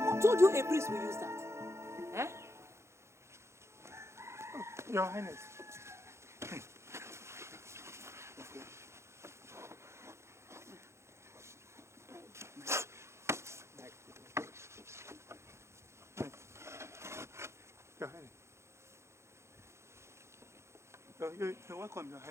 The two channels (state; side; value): late; left; 0.13 ms